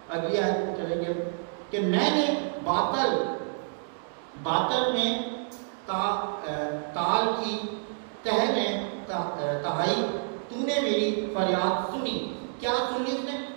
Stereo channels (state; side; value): silent; left; digital silence